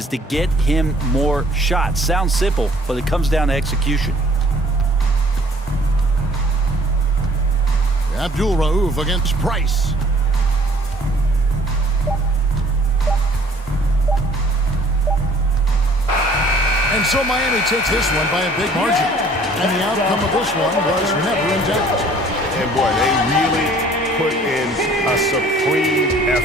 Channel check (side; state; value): both; normal; correlation 0.55